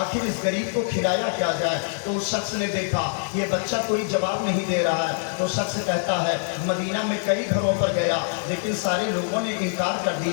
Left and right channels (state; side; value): silent; right; digital silence